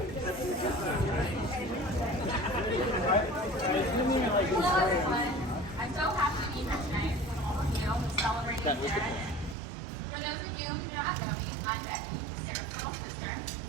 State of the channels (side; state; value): left; drops out; at 9.6 s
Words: everyone. I'm so happy to be here tonight with all of you celebrating Sarah Day. For those of you who do not know me, I'm Becky, Sarah's little sister.